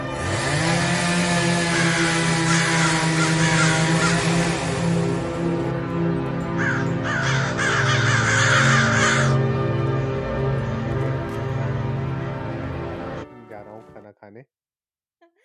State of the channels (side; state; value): both; identical; correlation 1.00